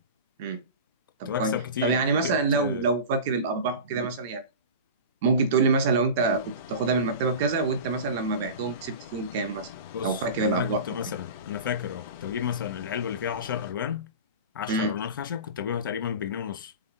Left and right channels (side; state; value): both; inverted; correlation -0.30